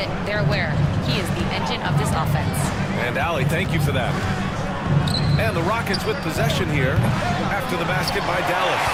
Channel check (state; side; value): identical; both; correlation 1.00